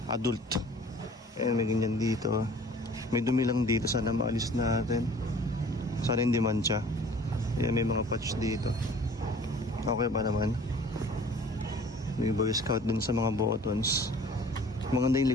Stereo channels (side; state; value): both; normal; correlation 0.49